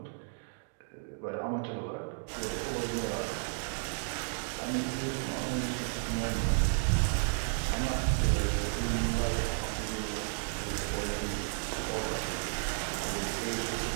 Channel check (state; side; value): silent; left; 56 dB below the other